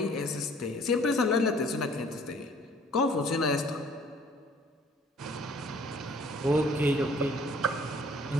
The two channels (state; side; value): normal; both; correlation 0.56